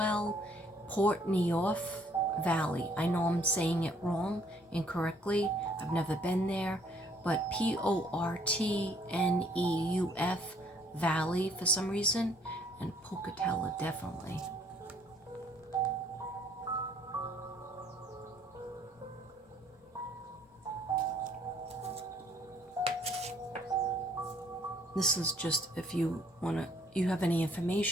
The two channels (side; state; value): both; normal; correlation 0.63